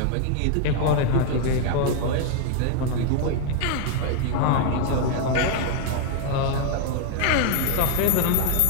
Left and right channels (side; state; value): both; different; correlation 0.00